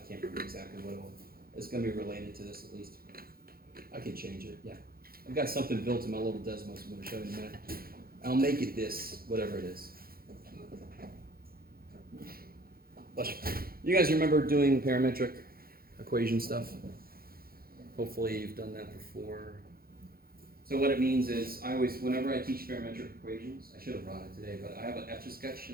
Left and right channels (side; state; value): left; late; 0.43 ms